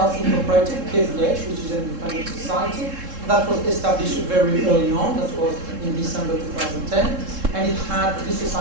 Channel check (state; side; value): late; left; 3.7 ms